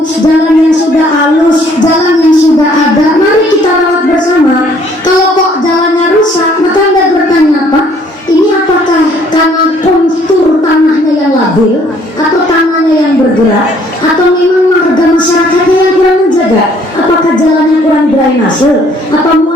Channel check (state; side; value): normal; both; correlation 0.61